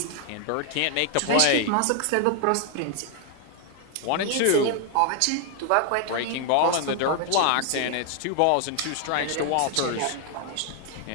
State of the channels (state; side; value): different; both; correlation 0.00